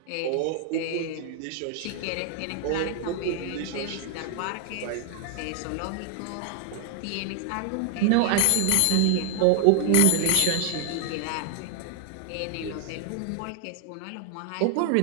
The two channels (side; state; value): both; different; correlation 0.00